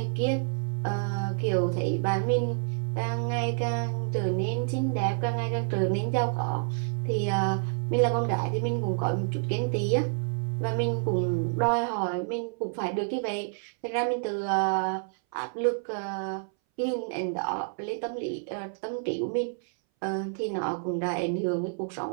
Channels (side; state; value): left; silent; 59 dB below the other